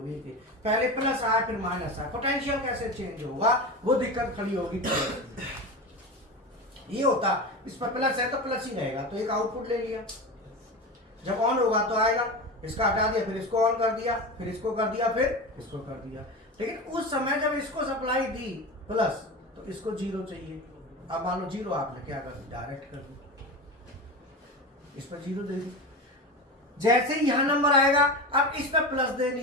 कि पहले प्लस आया फिर माइनस आया, पोटेंशियल कैसे चेंज होगा, वो दिक्कत खड़ी होगी। ये होता, इस पर प्लस है तो प्लस ही रहेगा, तो एक आउटपुट ले लिया, जब ऑन होगा तो आएगा, इसका हटा दिया, फिर इसको ऑन कर दिया, फिर इसको कर दिया, फिर इसको कर दिया। लेकिन उस समय जब इसको सप्लाई दी प्लस, तो इसको 0 चाहिए। अब मान लो 0 आपने क्या कर दी, डायरेक्ट कर दी, इस पर 0 दे दी। जैसे ही यहां नंबर आएगा, अब इस पर प्लस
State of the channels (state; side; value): normal; both; correlation 0.25